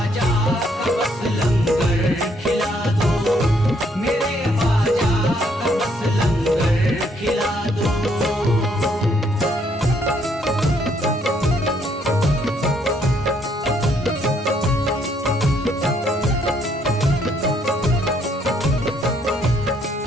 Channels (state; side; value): normal; both; correlation 0.69